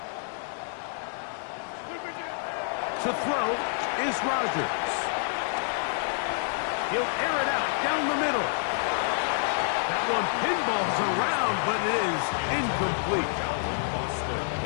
To throw is Rodgers. He'll air it out down the middle. That one pinballs around, but it is incomplete.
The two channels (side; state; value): right; silent; digital silence